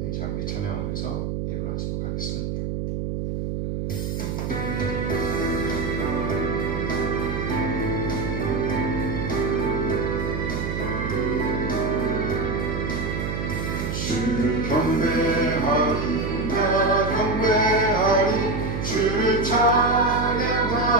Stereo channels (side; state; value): right; noise; hum, 3 dB below the sound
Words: 잠시 찬양하면서 일어나도록 하겠습니다. 주를 경배하리, 나 경배하리, 주를 찬양하리라.